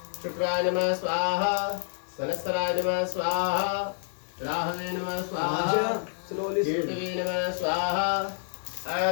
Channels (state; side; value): silent; right; 59 dB below the other